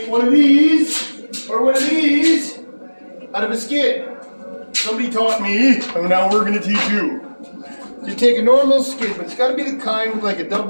one of these, or one of these, out of a skid. Somebody taught me, and now we're going to teach you. You take a normal skid, but it's got to be the kind with like a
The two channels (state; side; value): inverted; both; correlation -1.00